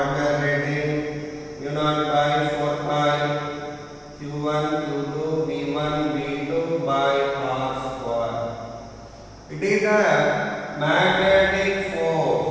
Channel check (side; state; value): both; identical; correlation 1.00